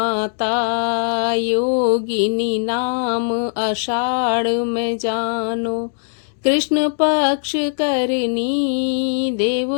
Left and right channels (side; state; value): right; silent; digital silence